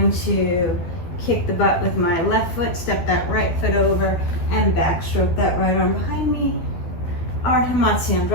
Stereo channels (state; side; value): late; right; 12 ms